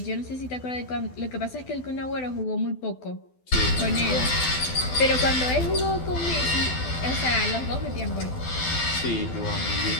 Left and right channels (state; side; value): late; right; 12 ms